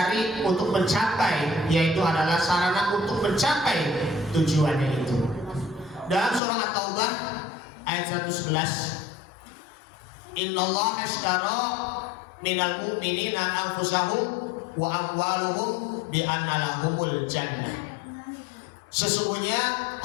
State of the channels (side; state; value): right; drops out; at 6.4 s